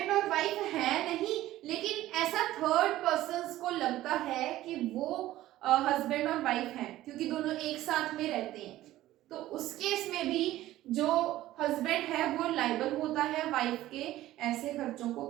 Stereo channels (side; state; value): left; quieter; 15.1 dB